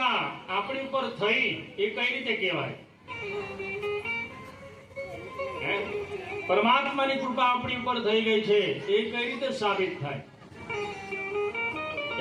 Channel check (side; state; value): both; identical; correlation 1.00